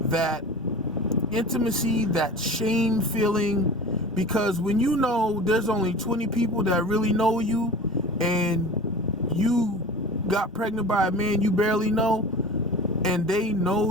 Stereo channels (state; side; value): normal; both; correlation 0.36